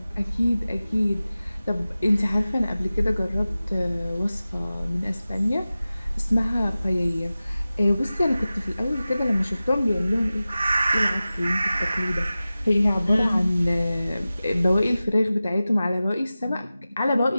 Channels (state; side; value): inverted; both; correlation -0.96